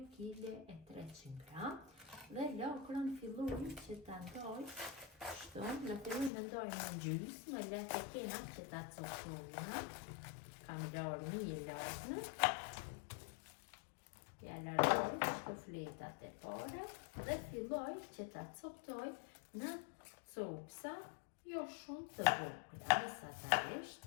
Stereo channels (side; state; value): right; drops out; at 6.3 s